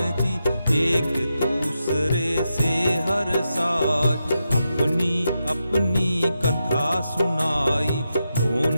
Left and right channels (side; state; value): both; inverted; correlation -0.87